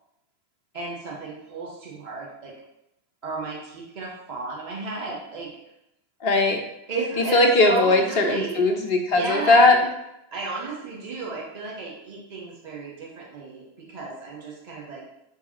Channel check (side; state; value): right; late; 2.9 ms